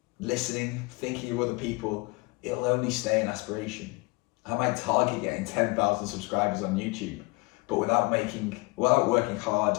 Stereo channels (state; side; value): quieter; right; 25.4 dB